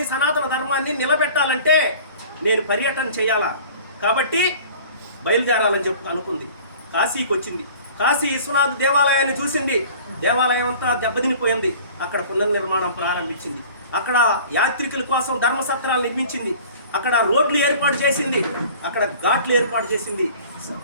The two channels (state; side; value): inverted; both; correlation -0.46